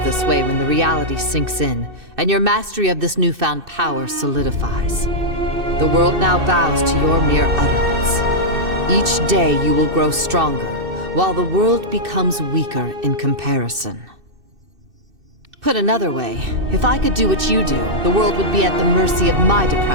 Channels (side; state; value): left; late; 2.6 ms